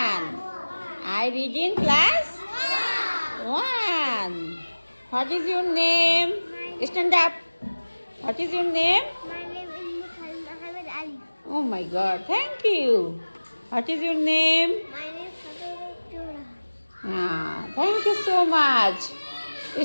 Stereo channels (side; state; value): both; inverted; correlation -1.00